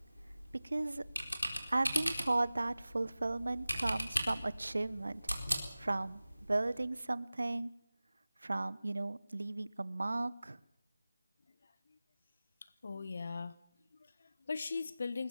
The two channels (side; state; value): both; inverted; correlation -0.97